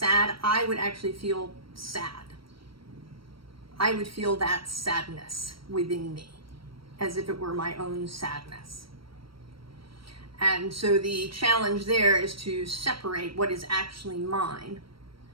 I would actually feel sad. I would feel that sadness within me, as if it were my own sadness. And so the challenge there is to separate what is actually mine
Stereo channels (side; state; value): left; late; 0.74 ms